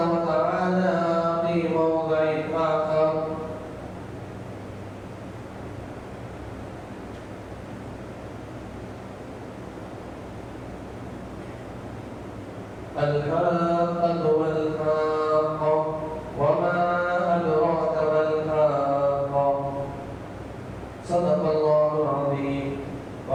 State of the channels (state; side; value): identical; both; correlation 1.00